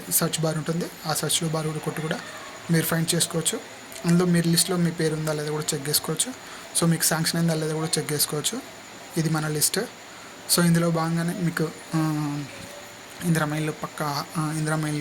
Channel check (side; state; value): both; identical; correlation 1.00